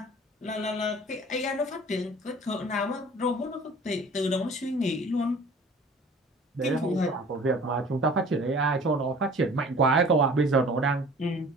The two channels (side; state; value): both; normal; correlation 0.47